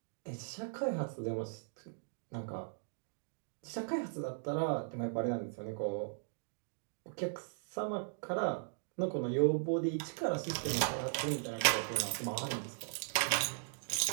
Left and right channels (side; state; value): left; silent; digital silence